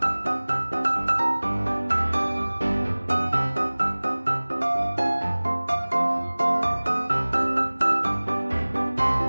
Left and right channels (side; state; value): both; inverted; correlation -1.00